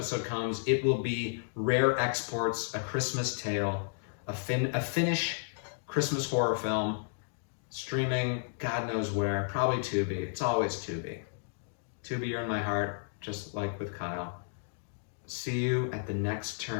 comes, it will be Rare Exports, A Christmas Tale, a Finnish Christmas horror film, streaming God knows where, probably Tubi. It's always Tubi. Tubi, you're in my heart, just like with Kyle. See you at the next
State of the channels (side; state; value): right; silent; digital silence